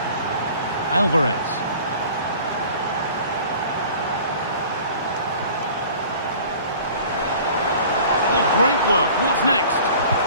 Alvarez. Oh, great work. What's next?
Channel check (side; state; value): both; inverted; correlation -0.46